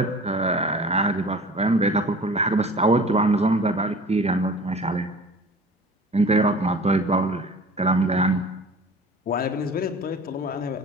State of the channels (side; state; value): both; normal; correlation 0.42